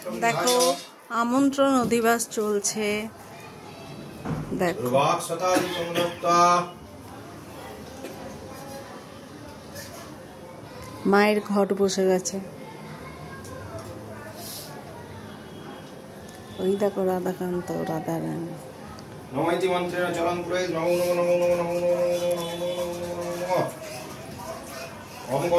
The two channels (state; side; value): identical; both; correlation 1.00